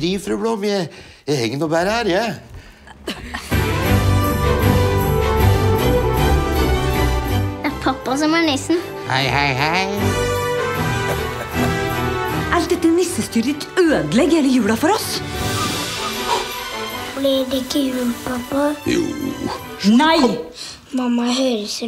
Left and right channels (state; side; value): identical; both; correlation 1.00